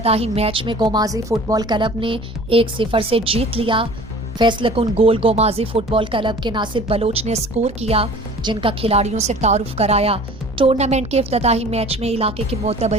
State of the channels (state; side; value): normal; both; correlation 0.45